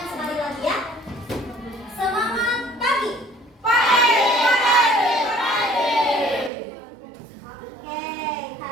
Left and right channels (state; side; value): drops out; left; at 6.5 s